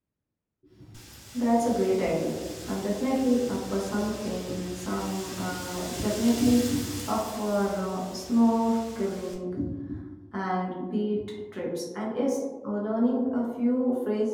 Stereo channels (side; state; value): both; identical; correlation 1.00